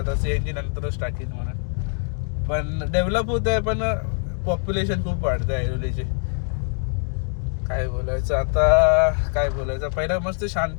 CNG नंतरच टाकीन म्हणून. पण डेव्हलप होत आहे, पण पॉप्युलेशन खूप वाढतं आहे ऐरोलीची. काय बोलायचं आता, काय बोलायचं. पहिला मस्त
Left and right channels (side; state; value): right; silent; 59 dB below the other